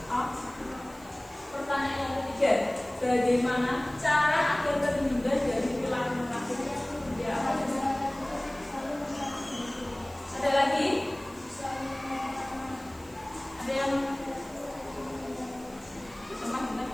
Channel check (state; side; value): noise; right; hiss, 23 dB below the sound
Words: Allah. Pertanyaan yang ketiga, bagaimana cara agar terhindar dari perilaku munafik? Ya, apa saja? Ada lagi? Ada yang pernah dengar